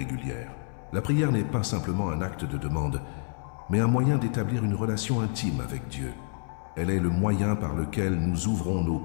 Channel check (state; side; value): silent; right; 59 dB below the other